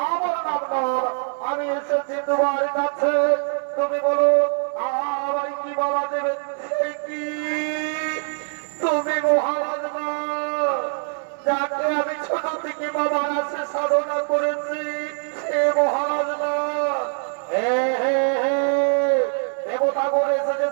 আমার নাম নল। আমি এসেছি তোমার কাছে, তুমি বলো আমার কি বলা দেবে? সে কি তুমি মহারাজ নল, যাকে আমি ছোট থেকে বাবার কাছে সাধনা করেছি, সে মহারাজ নল। হে হে হে দেবতা বলেছে যে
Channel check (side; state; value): left; silent; 63 dB below the other